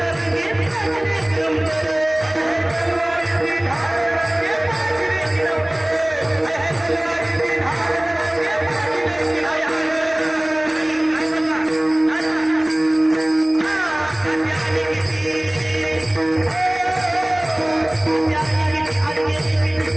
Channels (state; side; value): noise; right; hum, 29 dB below the sound